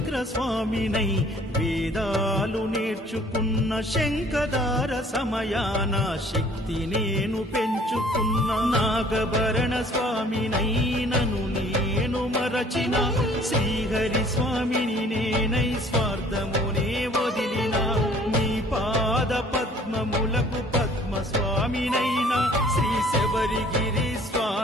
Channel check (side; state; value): both; normal; correlation 0.55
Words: స్వామినై వేదాలు నేర్చుకున్న, శంఖదార సమయాన శక్తి నేను పెంచుకున్న, నాగభరణ స్వామినై మరచిన శ్రీహరి స్వామిని నేనై స్వార్థమునే వదిలిన నీ పాద పద్మములకు పద్మ స్వామినైనా శ్రీ శబరిగిరి